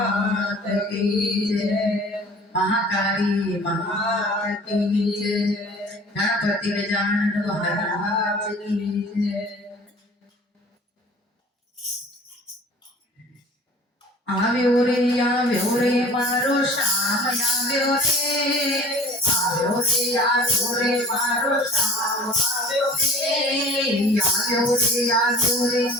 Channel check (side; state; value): both; normal; correlation 0.46